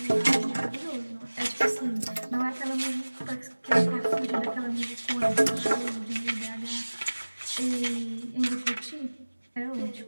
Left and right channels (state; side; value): inverted; both; correlation -1.00